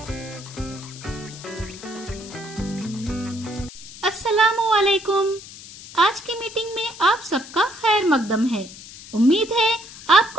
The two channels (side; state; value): left; noise; hiss, 16 dB below the sound